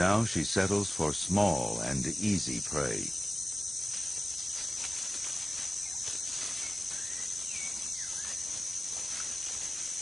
she settles for small and easy prey.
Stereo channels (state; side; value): normal; both; correlation 0.96